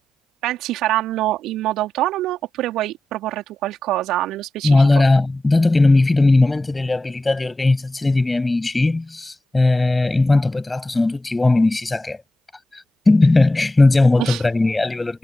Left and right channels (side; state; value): both; normal; correlation 0.92